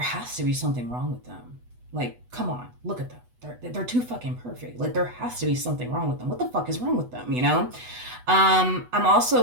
to be something wrong with them. Like, come on, look at them. They're too fucking perfect. Like there has to be something wrong with them. What the fuck is wrong with them? You know? I'm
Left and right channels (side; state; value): left; late; 8.1 ms